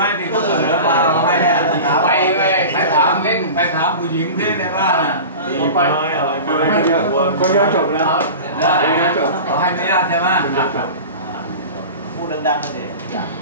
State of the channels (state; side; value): inverted; both; correlation -0.33